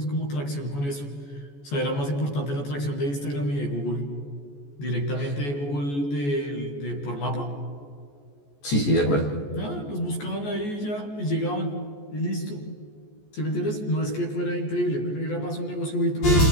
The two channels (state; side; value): late; right; 14 ms